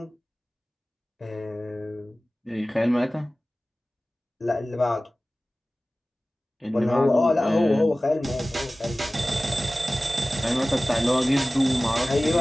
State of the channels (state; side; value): normal; both; correlation 0.97